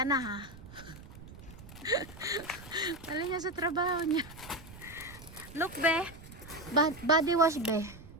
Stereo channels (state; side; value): noise; right; rumble, 16 dB below the sound